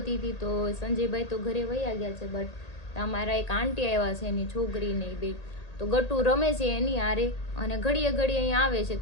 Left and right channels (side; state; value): right; late; 1.8 ms